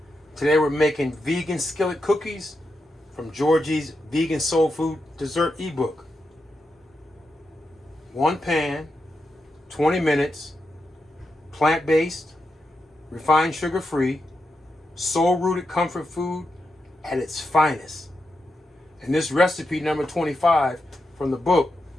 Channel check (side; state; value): both; normal; correlation 0.86